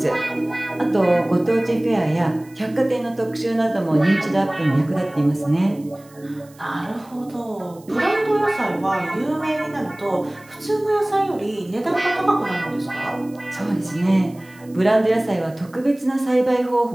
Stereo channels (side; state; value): right; noise; hiss, 27 dB below the sound